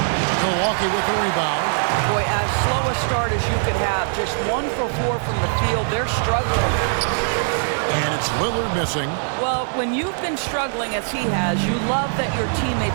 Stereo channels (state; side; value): silent; left; 65 dB below the other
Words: Milwaukee with the rebound. Boy, as slow a start as you could have. Just 1 for 4 from the field. They're struggling. And it's Lillard missing. Well, when you've been struggling as he has, you love that your